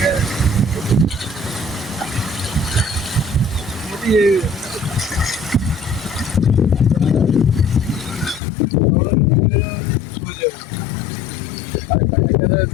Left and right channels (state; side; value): drops out; right; at 8.4 s